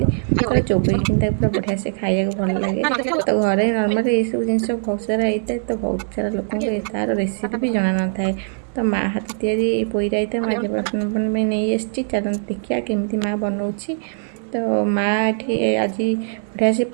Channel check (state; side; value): silent; left; 62 dB below the other